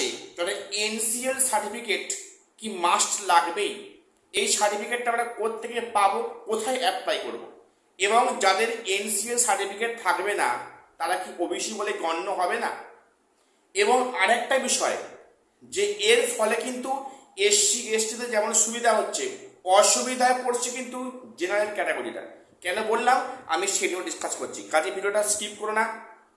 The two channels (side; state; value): both; identical; correlation 1.00